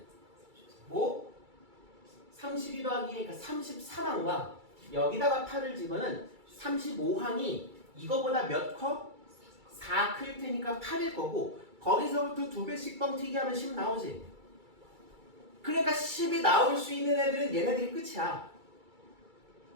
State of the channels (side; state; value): left; late; 2.3 ms